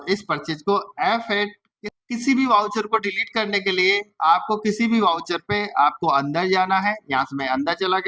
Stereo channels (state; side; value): identical; both; correlation 1.00